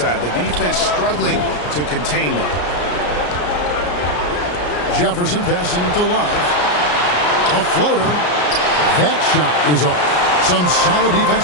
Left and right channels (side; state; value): right; late; 34 ms